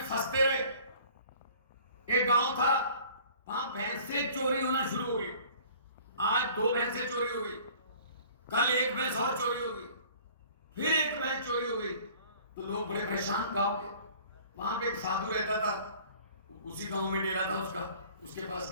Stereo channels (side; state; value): both; inverted; correlation -0.50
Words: फंसते रहे। एक गांव था, वहां भैंसें चोरी होना शुरू हो गई। आज 2 भैंसें चोरी हो गई, कल 1 भैंस और चोरी हो गई, फिर 1 भैंस चोरी हो गई। तो लोग बड़े परेशान गांव के। वहां पे एक साधु रहता था, उसी गांव में डेरा था उसका, उसके पास